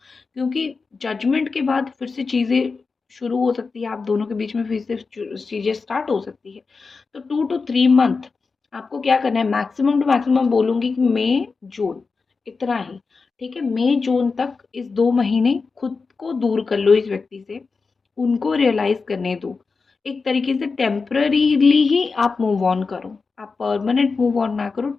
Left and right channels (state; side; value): quieter; right; 4.5 dB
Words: क्योंकि जजमेंट के बाद फिर से चीज़ें शुरू हो सकती है। आप दोनों के बीच में फिर से चीज़ें स्टार्ट हो सकती है। तो 2 to 3 मंथ आपको क्या करना है, मैक्सिमम टू मैक्सिमम बोलूँगी कि मई जून इतना ही। ठीक है, मई जून तक इस 2 महीने खुद को दूर कर लो इस व्यक्ति से, उनको रियलाइज करने दो। एक तरीके से टेम्पररीली ही आप मूव ऑन करो, आप परमानेंट मूव ऑन ना करो,